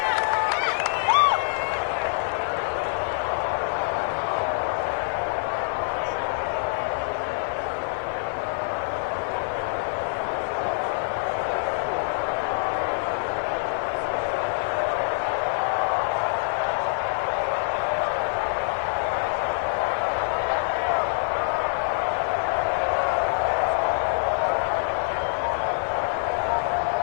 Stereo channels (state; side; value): silent; right; digital silence